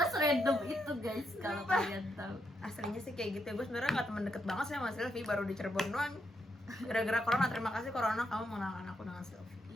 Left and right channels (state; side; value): normal; both; correlation 0.79